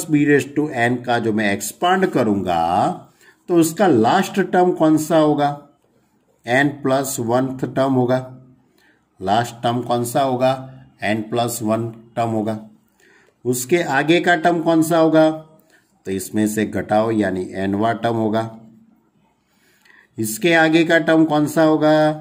b raise to n का जो मैं एक्सपांड करूंगा तो उसका लास्ट टर्म कौन सा होगा n प्लस 1th टर्म होगा। लास्ट टर्म कौन सा होगा n प्लस 1 टर्म होगा। उसके आगे का टर्म कौन सा होगा तो इसमें से घटाओ यानी nवां टर्म होगा। इसके आगे का टर्म कौन सा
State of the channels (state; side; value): identical; both; correlation 1.00